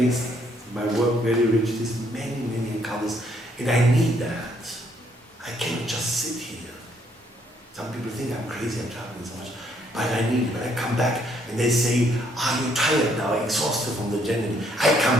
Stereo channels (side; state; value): both; normal; correlation 0.69